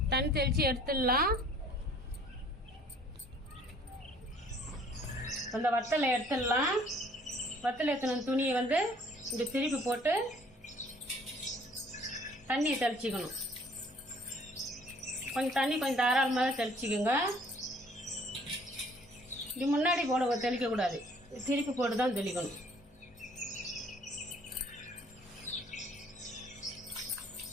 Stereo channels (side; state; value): both; normal; correlation 0.57